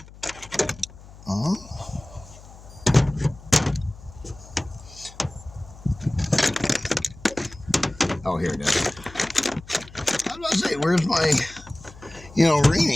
Oh, here it is. I was about to say, where's my,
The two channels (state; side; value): noise; left; hum, 20 dB below the sound